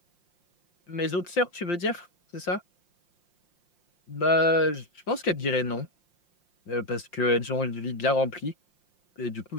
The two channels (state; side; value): late; right; 5.7 ms